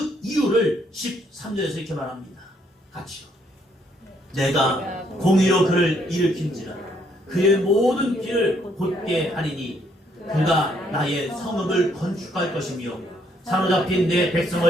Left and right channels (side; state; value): both; normal; correlation 0.70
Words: 이유를 13절에서 이렇게 말합니다. 같이요. 내가 공의로 그를 일으킨지라 그의 모든 길을 곧게 하리니 그가 나의 성읍을 건축할 것이며 사로잡힌 내